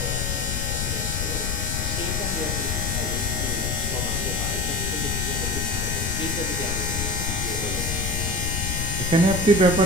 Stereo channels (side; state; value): left; noise; rumble, 2 dB below the sound